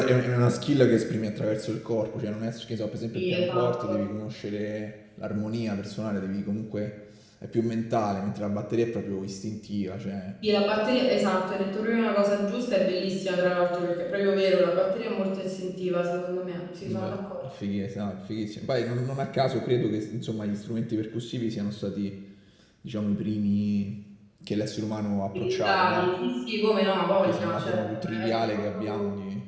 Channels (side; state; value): both; identical; correlation 1.00